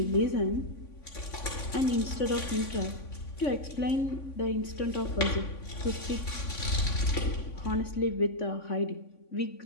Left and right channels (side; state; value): right; late; 3.5 ms